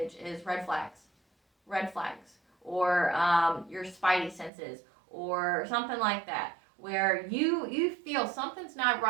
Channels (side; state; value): left; drops out; at 4.5 s